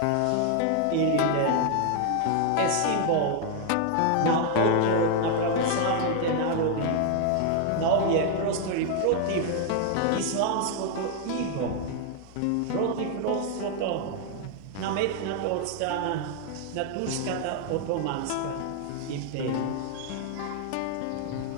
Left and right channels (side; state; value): both; different; correlation 0.00